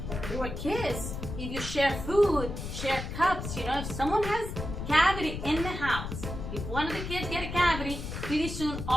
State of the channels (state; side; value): noise; left; rumble, 6 dB below the sound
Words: through a kiss. If you share food, share cups, if someone has cavity in the house, if one of the kids get a cavity, pretty soon